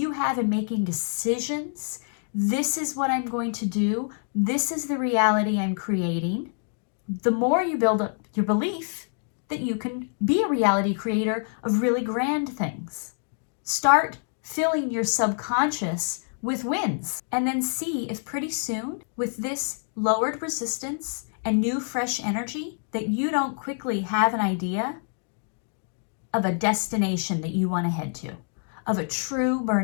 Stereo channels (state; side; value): silent; right; 61 dB below the other